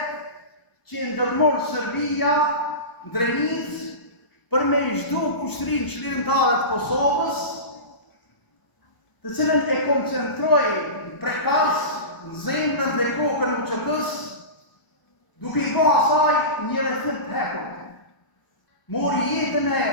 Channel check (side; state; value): right; late; 1.0 ms